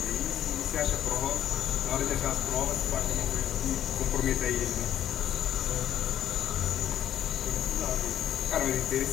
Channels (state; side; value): quieter; right; 10.9 dB